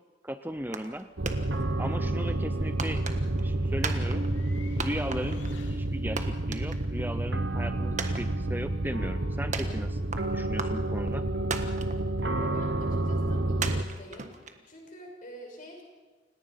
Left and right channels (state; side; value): normal; both; correlation 0.73